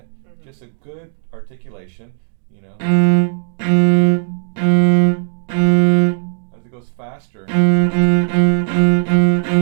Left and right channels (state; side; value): silent; left; digital silence